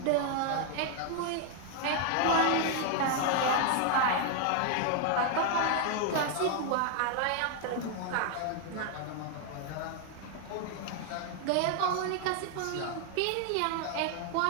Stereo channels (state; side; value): different; both; correlation 0.00